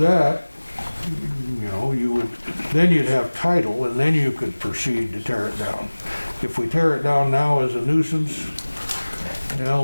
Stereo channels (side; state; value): both; inverted; correlation -1.00